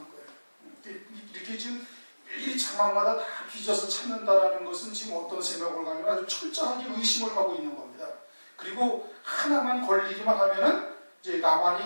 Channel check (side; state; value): both; inverted; correlation -1.00